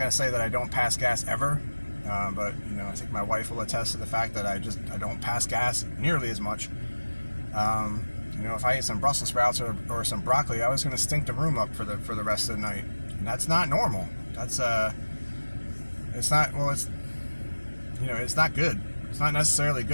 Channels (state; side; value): inverted; both; correlation -1.00